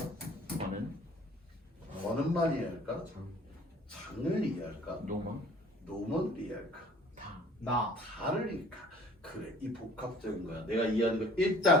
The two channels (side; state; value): both; normal; correlation 0.51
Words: 너는만 이해할까? 장을 이해할까? 노먼을 이해할까? 다를 이해할까? 그래, 이 복합적인 거야. 내가 이해하는 거.